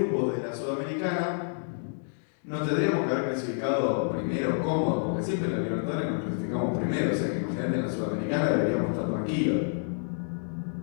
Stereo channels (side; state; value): right; silent; digital silence